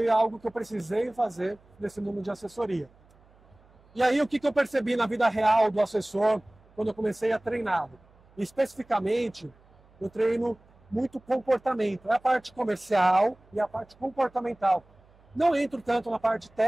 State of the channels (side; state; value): right; noise; hum, 29 dB below the sound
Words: algo que eu precisei fazer nesse mundo de assessoria. E aí, o que eu percebi na vida real do assessor quando eu comecei a treiná-lo? Especificamente, eu treino muito comportamento. É a parte comercial e a parte comportamental. Não entro tanto na parte